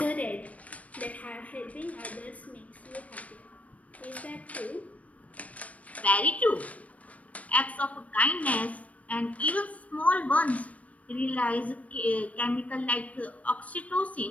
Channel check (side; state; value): right; late; 0.068 ms